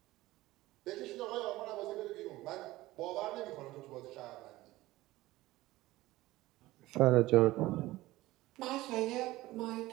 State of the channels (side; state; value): left; quieter; 17.8 dB